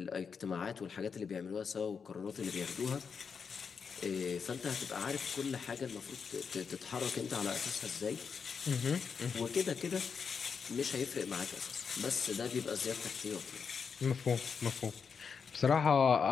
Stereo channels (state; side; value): quieter; right; 6.0 dB